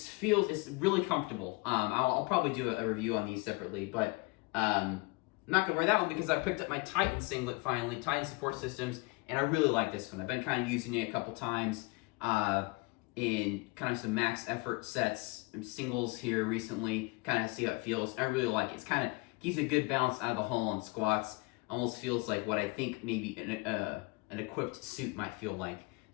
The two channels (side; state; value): right; quieter; 27.5 dB